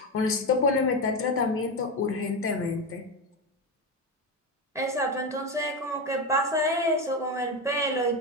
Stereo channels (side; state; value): both; normal; correlation 0.15